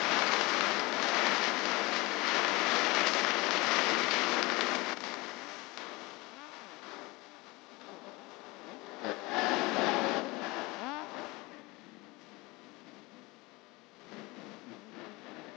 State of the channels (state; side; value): quieter; right; 23.4 dB